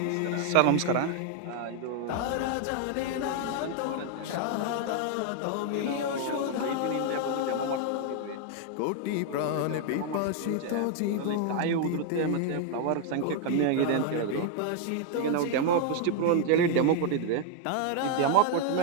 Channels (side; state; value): both; different; correlation 0.00